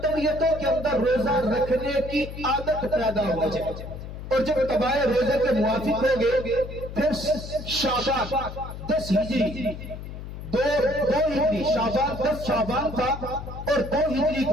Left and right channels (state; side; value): noise; left; hum, 10 dB below the sound